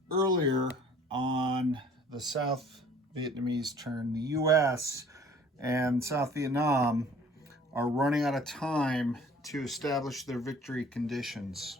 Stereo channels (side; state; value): both; normal; correlation 0.52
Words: earlier on the South Vietnamese turn, the U.S. and South Vietnam are running out of time to establish their victory conditions.